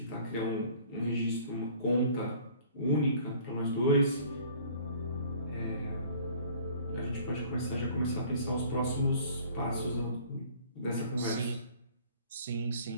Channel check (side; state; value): both; inverted; correlation -0.52